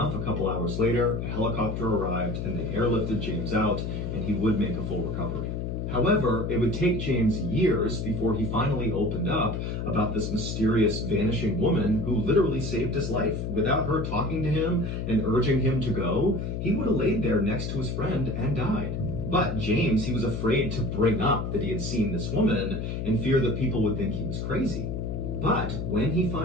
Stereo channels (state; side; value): noise; left; hum, 3 dB below the sound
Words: a couple hours later, a helicopter arrived and they airlifted James out, and he would make a full recovery. However, it would take James years before he finally opened up about this mysterious vanishing woman who literally saved his life. Without her talking to him and urging him to go, he would have laid there next to his friend and died. But James, he was afraid to bring up that he had seen this woman in fear that people would think he was crazy. But when he